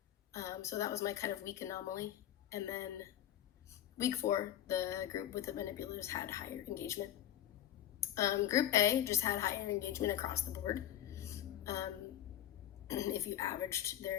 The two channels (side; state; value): right; quieter; 11.7 dB